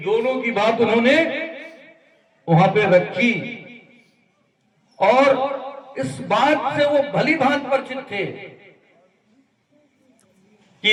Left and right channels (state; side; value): identical; both; correlation 1.00